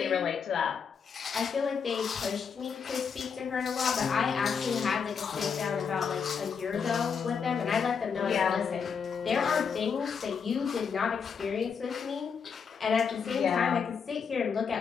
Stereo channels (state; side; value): quieter; right; 6.3 dB